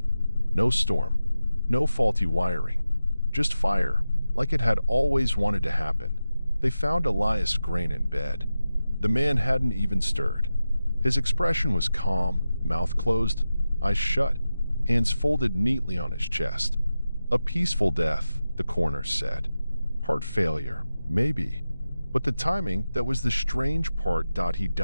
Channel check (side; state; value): both; inverted; correlation -0.93